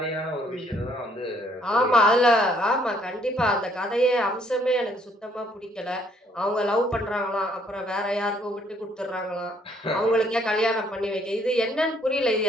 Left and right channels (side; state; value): both; normal; correlation 0.65